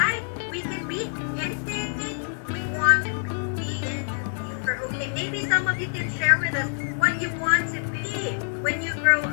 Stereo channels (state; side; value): silent; right; digital silence